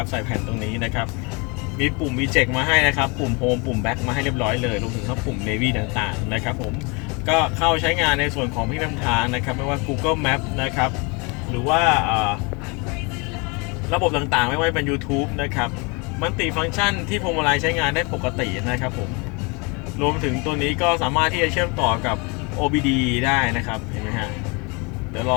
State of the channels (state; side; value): quieter; right; 30.0 dB